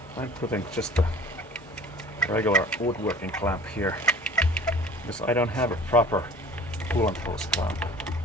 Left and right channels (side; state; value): both; normal; correlation 0.46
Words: I'm putting just a regular woodworking clamp here because I don't have a proper coolant hose clamp.